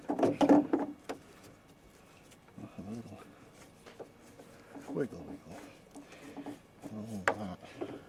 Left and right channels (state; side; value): identical; both; correlation 1.00